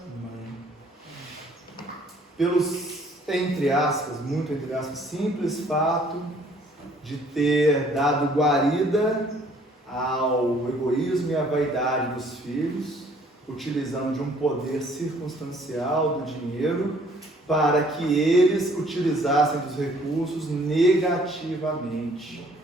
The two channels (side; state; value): both; normal; correlation 0.59